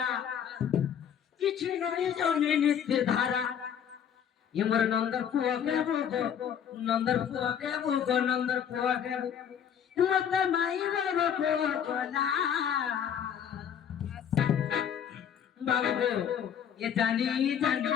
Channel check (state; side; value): quieter; right; 8.6 dB